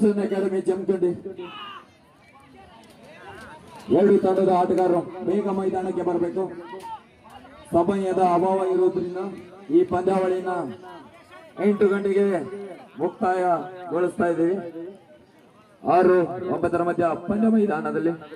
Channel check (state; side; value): identical; both; correlation 1.00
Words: ಅಕಾಡೆಮಿ ಜಮಖಂಡಿ. 2 ತಂಡದ ಆಟಗಾರರು ಬೇಗ ಮೈದಾನಕ್ಕೆ ಬರಬೇಕು. ಸಮಯದ ಅಭಾವ ಇರುವುದರಿಂದ ಈ ಪಂದ್ಯಾವಳಿನ 8 ಗಂಟೆಗೆ ಮುಕ್ತಾಯಗೊಳಿಸ್ತಾ ಇದ್ದೀವಿ. 6-9 ಮಧ್ಯ ಪಂದ್ಯ ಮೈದಾನದಲ್ಲಿ